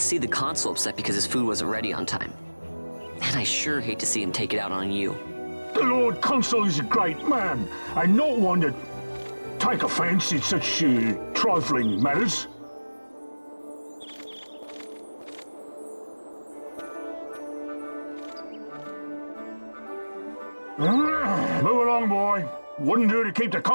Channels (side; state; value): both; inverted; correlation -1.00